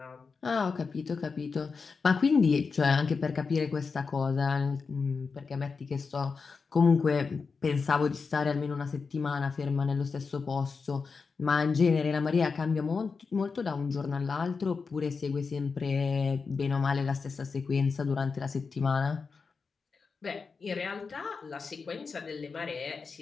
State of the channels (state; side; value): quieter; right; 4.9 dB